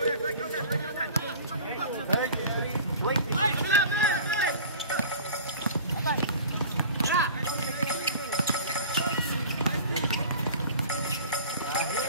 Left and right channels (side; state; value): both; inverted; correlation -0.41